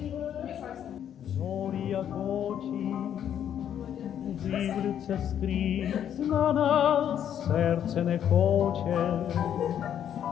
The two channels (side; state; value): right; quieter; 9.6 dB